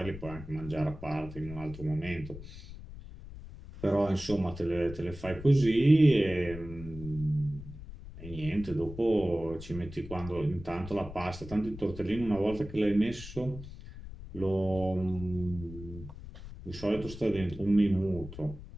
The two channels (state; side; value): noise; left; rumble, 13 dB below the sound